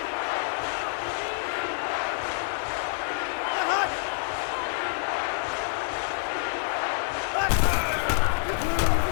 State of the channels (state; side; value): silent; right; 60 dB below the other